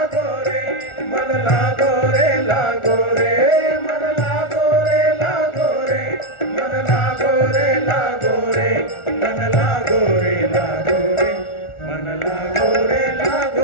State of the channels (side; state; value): right; late; 1.4 ms